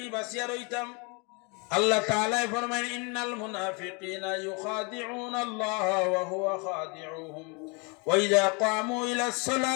বাঁচিয়া রইতাম। আল্লাহ তাআলা ফরমায় ইন্নাল মুনাফিকিনা ইউখাদিউনা আল্লাহ ওয়া হুয়া খাদিউহুম ওয়া ইযা ক্বামু ইলাস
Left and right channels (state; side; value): quieter; right; 31.9 dB